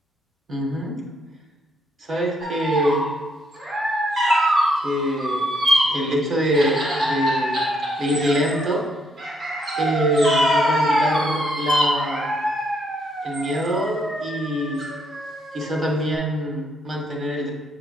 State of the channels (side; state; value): both; normal; correlation 0.73